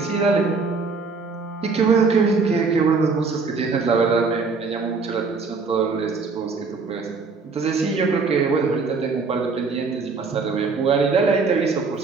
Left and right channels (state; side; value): quieter; left; 4.5 dB